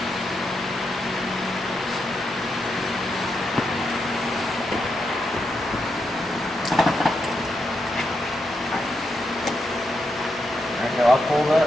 Alright, go up a little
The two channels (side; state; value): both; normal; correlation 0.84